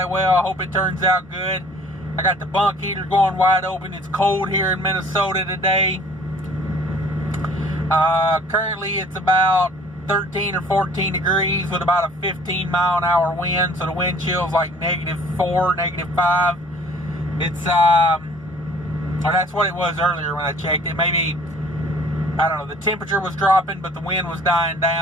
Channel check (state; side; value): normal; both; correlation 0.52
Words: well. I hope it turns out good. I got the bunk heater going wide open. It's cold here in Minnesota today. Currently it's about 13 or 14 degrees with about a 15 mile an hour wind. So the wind chill is like -4, -5. It's or that's what it was earlier when I checked it. Maybe, I don't know, the temperature was dropping, but the wind was dying